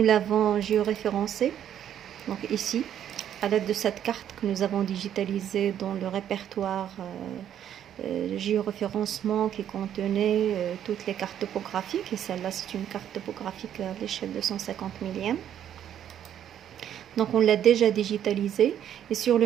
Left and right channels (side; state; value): left; quieter; 10.1 dB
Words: l'avons géoréférencé. Donc ici, à l'aide de cette carte que nous avons digitalisée dans le répertoire géoréférencement qui contenait toutes les cartes topographiques, et celle-là c'est une carte topographique à l'échelle de 150 millième. Donc on l'a déjà digitalisé, et sur